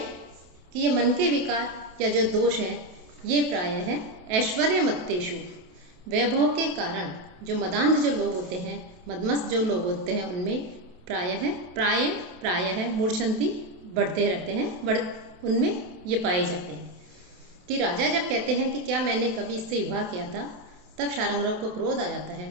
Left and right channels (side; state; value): left; late; 27 ms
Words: कि ये मन के विकार या जो दोष हैं ये प्राय है ऐश्वर्य मत्तेषु, वैभव के कारण जो मदांध जो लोग होते हैं, मदमस्त जो लोग होते हैं, उनमें प्राय है मूर्छन्ति, बढ़ते रहते हैं, उनमें ये पाए जाते हैं। कि राजा जब कहते हैं कि क्या मैंने कभी इससे विवाह किया था, तब शार्ंगधर को क्रोध आ जाता है